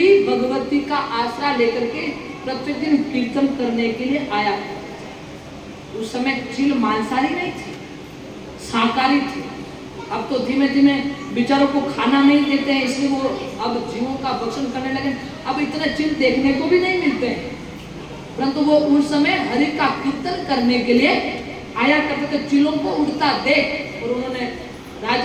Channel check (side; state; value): both; identical; correlation 1.00